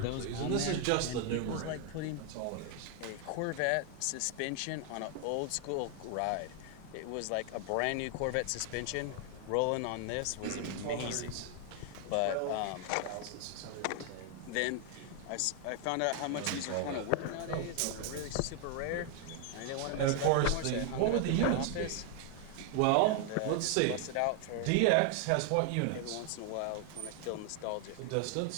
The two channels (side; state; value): both; different; correlation 0.00